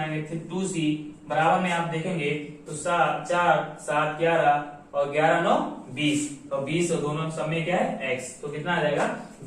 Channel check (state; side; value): identical; both; correlation 1.00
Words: 2c। बराबर में आप देखेंगे तो 4 7 11 और 11 9 20, तो 20 और दोनों सब में क्या है x, तो कितना आ जाएगा